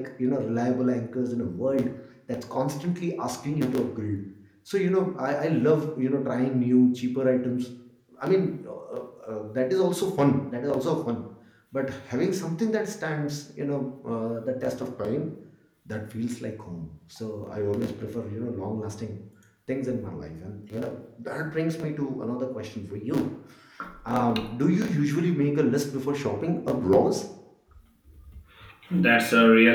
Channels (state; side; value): identical; both; correlation 1.00